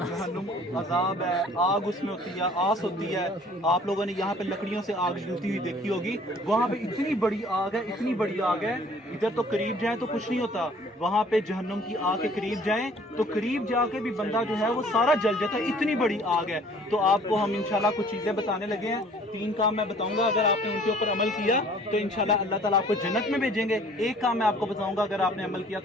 जहन्नुम अजाब है, आग उसमें होती है, आस होती है। आप लोगों ने यहाँ पे लकड़ियों से आग जलती हुई देखी होगी, वहाँ पे इतनी बड़ी आग है, इतनी बड़ी आग है, इधर तो करीब जाए तो कुछ नहीं होता, वहाँ पे जहन्नुम की आग के करीब जाएं तो करीब जाके भी बंदा जो है वो सारा जल जाता है, इतनी बड़ी आग है। तो आपको हम इंशाल्लाह कुछ चीजें बताने लगे हैं, 3 काम मैं बताऊंगा, अगर आपने उनके ऊपर अमल किया तो इंशाल्लाह अल्लाह ताला आपको जन्नत में भेजेंगे। एक काम मैं आपको बताऊंगा, अगर आपने अमल किया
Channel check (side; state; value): both; normal; correlation 0.54